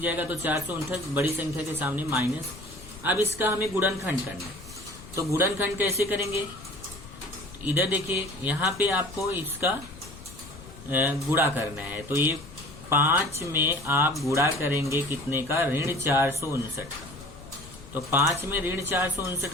जाएगा तो 459 बड़ी संख्या के सामने माइनस। अब इसका हमें गुणनखंड करना है, तो गुणनखंड कैसे करेंगे, इधर देखिए यहाँ पे आपको इसका गुणा करना है। तो ये 5 में आप गुणा करेंगे कितने का, ऋण 459 का। तो 5 में ऋण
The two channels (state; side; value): noise; left; rumble, 16 dB below the sound